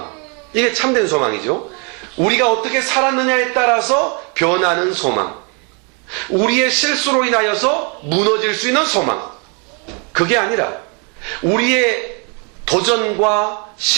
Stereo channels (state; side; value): quieter; left; 35.4 dB